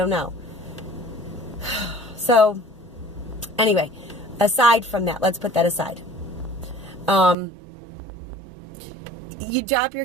know. So, anyway, aside from that, let's put that aside. you drop your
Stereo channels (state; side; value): drops out; left; at 7.4 s